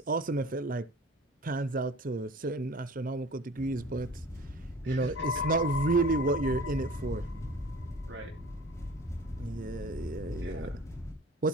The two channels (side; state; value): both; normal; correlation 0.43